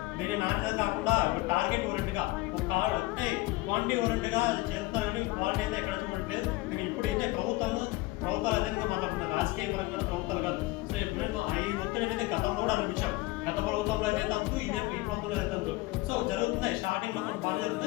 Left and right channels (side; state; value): right; quieter; 20.0 dB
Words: దీని నాణ్యత కాకుండా టార్గెట్ ఓరియంట్గా అంటే క్వాంటిటీ ఓరియంట్గా చేస్తున్నారు, కానీ క్వాలిటీ అయితే ఎక్కడ చూడట్లేదు. నేను ఇప్పుడు అయితే ప్రభుత్వాలు అదేవిధంగా మాట్లాడుతున్నారు, రాజకీయ పరంగా ప్రభుత్వాలు కాదు. సో ఇప్పుడు ఈ ఒత్తిడి అనేది గతంలో కూడా అనిపించాం. గత ప్రభుత్వంలో అయితే తంతు, ఈ ప్రభుత్వంలో అయితే తంతు. సో జరుగుతున్నాయి, స్టార్టింగ్లో కొన్ని బాగా